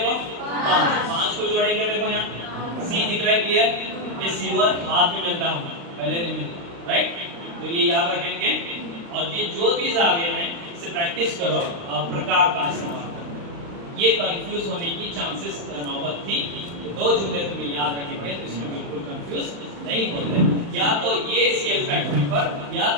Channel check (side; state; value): left; late; 35 ms